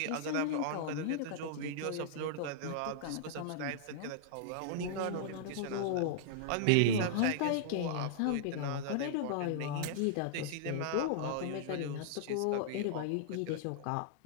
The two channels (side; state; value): both; different; correlation -0.01